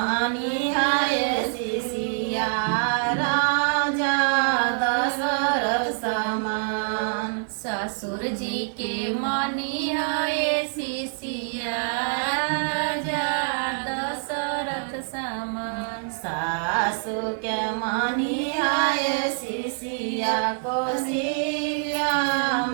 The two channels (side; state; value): left; silent; digital silence